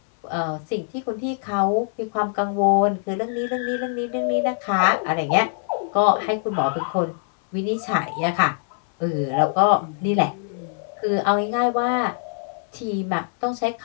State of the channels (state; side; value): silent; right; 62 dB below the other